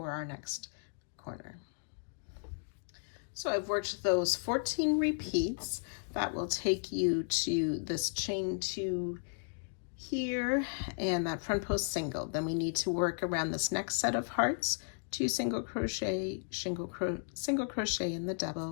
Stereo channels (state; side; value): silent; right; digital silence